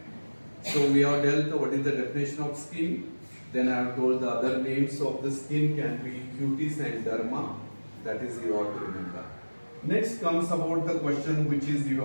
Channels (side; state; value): both; inverted; correlation -1.00